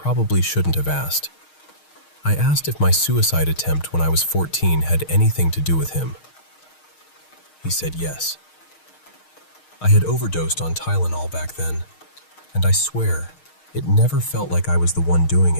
shouldn't have asked. I asked if my suicide attempt when I was 14 had anything to do with him. He said yes. I had overdosed on Tylenol back then, and I swear, it never felt like I was the one doing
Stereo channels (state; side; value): late; right; 6.4 ms